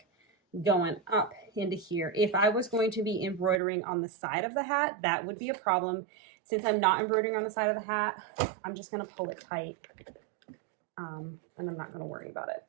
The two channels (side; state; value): left; drops out; at 3.6 s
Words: going up into here. If I was going to be embroidering on the side of the hat, that would be a problem. Since I'm not embroidering on the side of the hat, I'm just going to pull it tight, and I'm not going to worry about it.